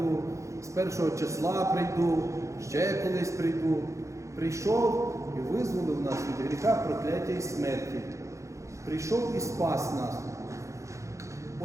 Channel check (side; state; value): left; late; 0.15 ms